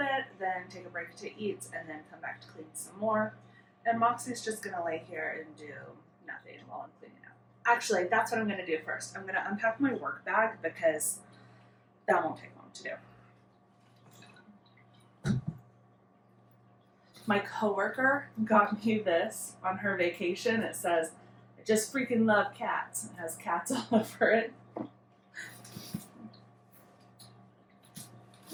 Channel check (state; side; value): identical; both; correlation 1.00